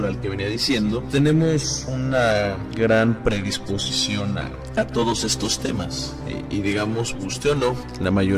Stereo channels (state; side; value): identical; both; correlation 1.00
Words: que venía diciendo, tenemos una gran predisposición a todos estos temas. Y digamos, guste o no, la